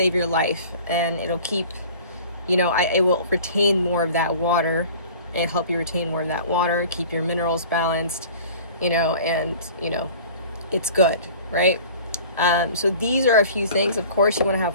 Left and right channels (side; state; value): both; inverted; correlation -0.45